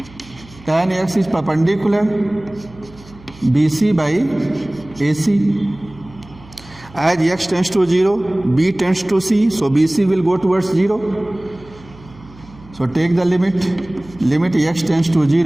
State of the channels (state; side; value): noise; right; hum, 22 dB below the sound